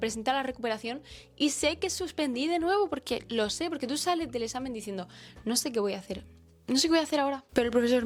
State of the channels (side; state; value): both; identical; correlation 1.00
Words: a la recuperación y sé que suspendí de nuevo porque lo sé, porque tú sales del examen diciendo, no sé qué voy a hacer. No sé qué voy a hacer ahora, pero el profesor